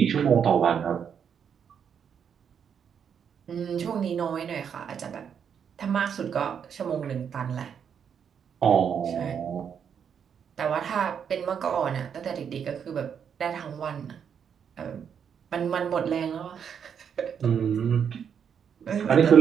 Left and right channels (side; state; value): left; quieter; 7.6 dB